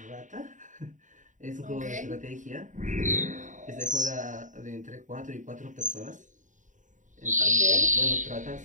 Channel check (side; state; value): left; late; 0.36 ms